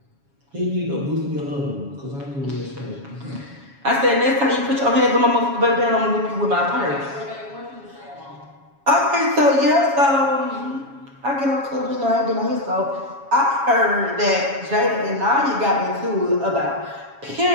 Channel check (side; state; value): left; late; 7.2 ms